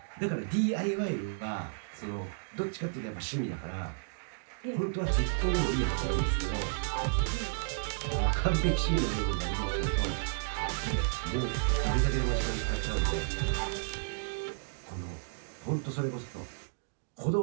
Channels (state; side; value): silent; left; digital silence